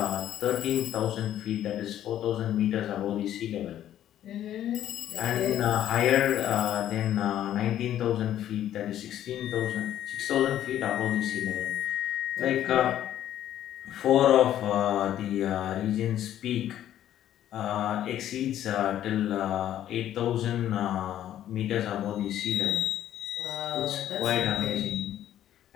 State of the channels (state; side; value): quieter; right; 11.6 dB